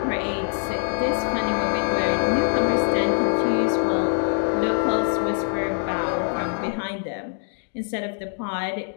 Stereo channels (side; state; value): right; silent; 63 dB below the other